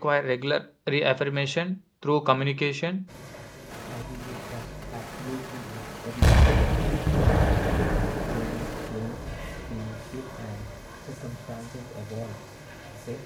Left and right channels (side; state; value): both; identical; correlation 1.00